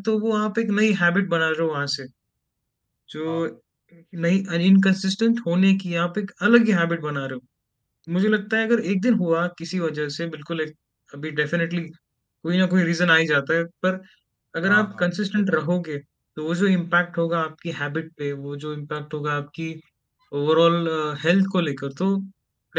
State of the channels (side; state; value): both; identical; correlation 1.00